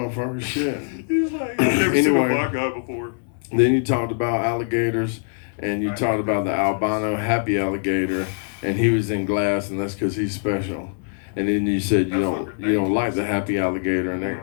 Shit. He's like, I've never seen a black guy before. Then you talked about alligators, and you talked about the albino happy alligator, and he was in glass, and that's because he's special. And then you said you don't like the happy alligator, and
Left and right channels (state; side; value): silent; right; digital silence